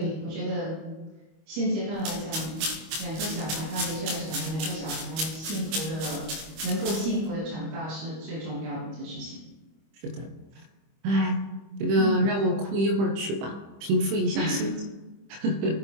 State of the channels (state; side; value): late; left; 25 ms